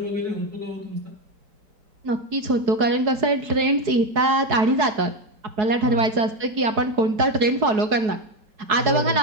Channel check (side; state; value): left; late; 4.7 ms